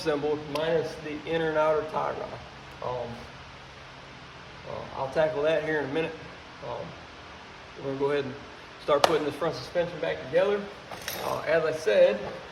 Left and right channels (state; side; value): identical; both; correlation 1.00